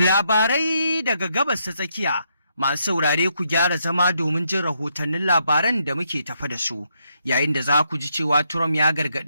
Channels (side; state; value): both; inverted; correlation -0.77